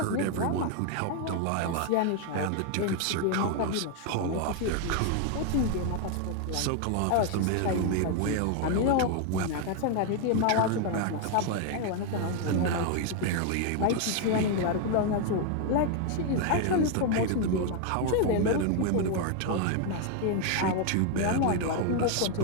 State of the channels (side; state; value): both; different; correlation 0.01